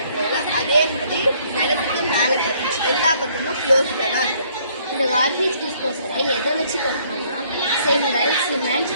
அதே மாதிரி நிலத்துக்கு மேலே கட்டணும். எல்லா பக்கமும் க்ளோஸ்டாக தான் இருக்கும். இந்த கார்பேஜ் டிஸ்போசலை எதை வச்சு கட்டணும்னா செங்கல், சிமெண்ட்,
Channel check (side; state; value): both; inverted; correlation -0.64